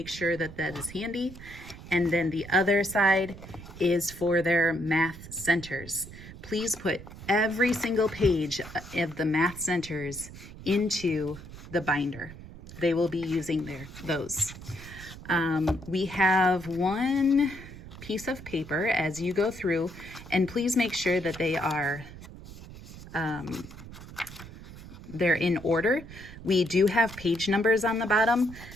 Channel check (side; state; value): right; noise; rumble, 15 dB below the sound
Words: sure that that is handy. And then the other side is for their math centers. Please put every single page of the math centers into the binder. They will be using those. We have one piece of paper as you go through, and please make sure that they are they're in order. We do have page numbers on the bottom.